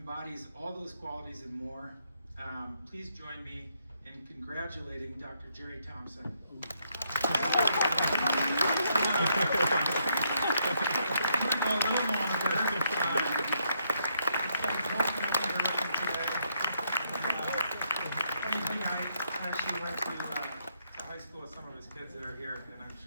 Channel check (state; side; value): inverted; both; correlation -0.75